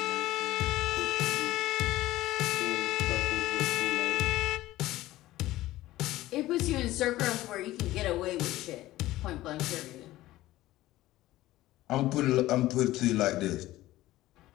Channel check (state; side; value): quieter; right; 16.4 dB